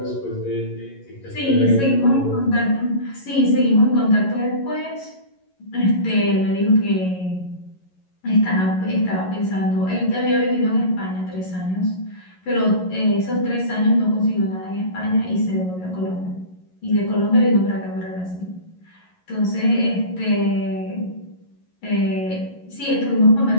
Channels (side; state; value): right; late; 11 ms